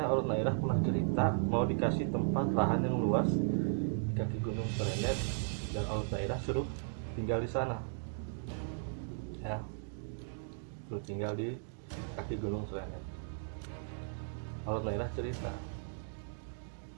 Olet Nairah pernah cerita mau dikasih tempat lahan yang luas di kaki Gunung Srenet, dan Olet Nairah suruh tinggal di sana ya, suruh tinggal di kaki Gunung Srenet. Olet Nairah cerita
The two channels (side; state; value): left; silent; digital silence